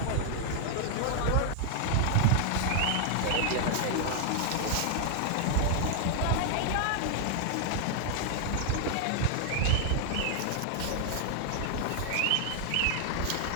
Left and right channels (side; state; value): both; different; correlation 0.00